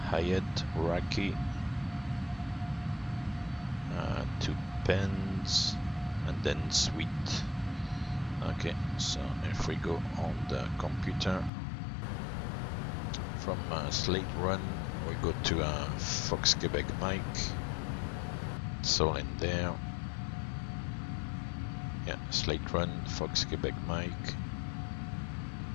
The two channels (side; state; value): right; drops out; at 11.5 s